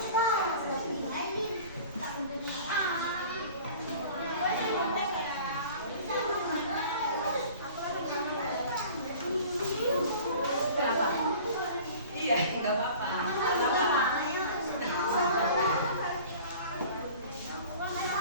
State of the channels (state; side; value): inverted; both; correlation -0.44